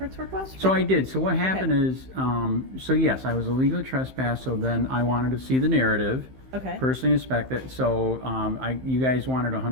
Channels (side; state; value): left; late; 15 ms